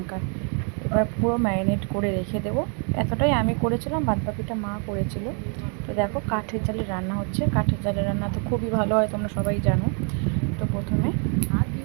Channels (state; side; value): quieter; left; 39.9 dB